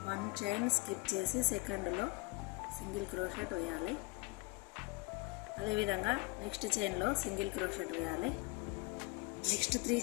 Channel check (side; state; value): right; quieter; 24.5 dB